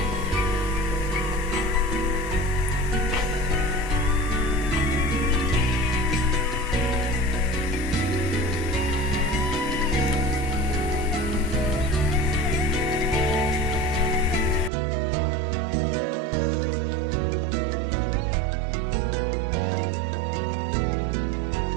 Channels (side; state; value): left; drops out; at 14.7 s